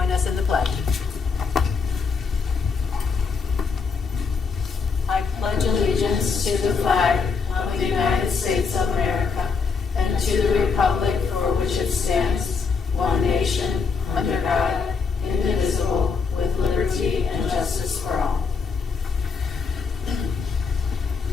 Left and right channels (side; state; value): right; quieter; 5.1 dB